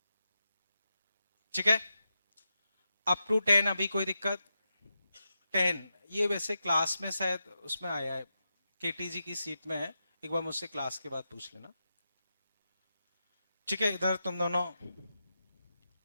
ठीक है, अप टू 10 अभी कोई दिक्कत? 10 ये वैसे क्लास में शायद उसमें आया है, केटीजी की सीट में है, एक बार मुझसे क्लास के बाद पूछ लेना। ठीक है, इधर तुम दोनों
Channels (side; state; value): both; inverted; correlation -0.89